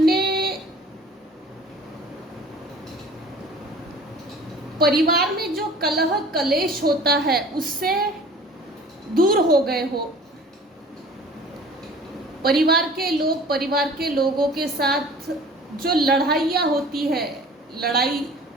परिवार में जो कलह कलेश होता है उससे दूर हो गए हो। परिवार के लोगों के साथ जो लड़ाइयाँ होती है, लड़ाई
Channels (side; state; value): both; normal; correlation 0.46